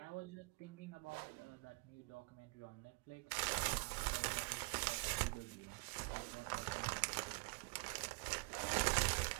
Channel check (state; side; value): quieter; left; 30.9 dB